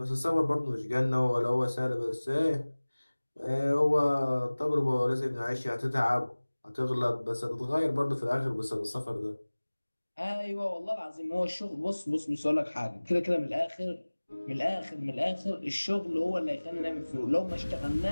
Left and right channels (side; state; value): both; inverted; correlation -1.00